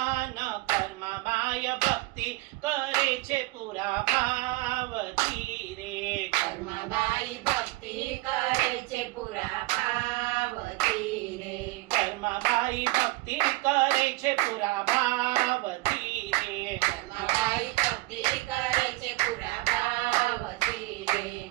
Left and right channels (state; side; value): quieter; left; 20.4 dB